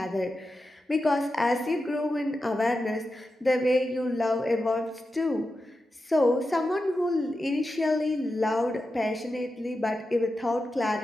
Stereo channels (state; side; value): normal; both; correlation 0.90